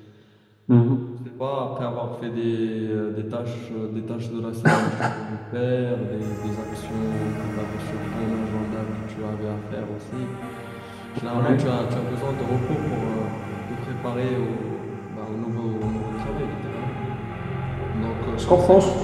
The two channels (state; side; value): identical; both; correlation 1.00